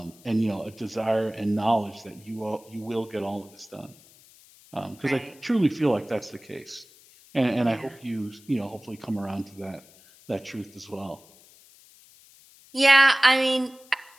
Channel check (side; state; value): left; noise; hiss, 25 dB below the sound